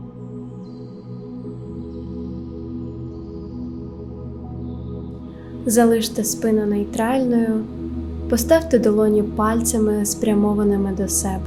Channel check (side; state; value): both; identical; correlation 1.00